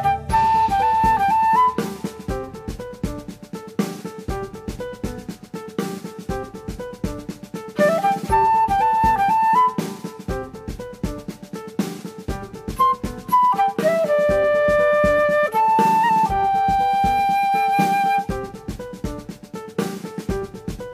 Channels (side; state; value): both; identical; correlation 1.00